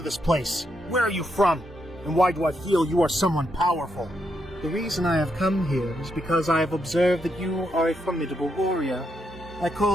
this place? Where are you from? And why do I feel you are someone powerful?" "The reason I have come here is because I have observed that you are a formidable warrior. I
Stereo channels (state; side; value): normal; both; correlation 0.80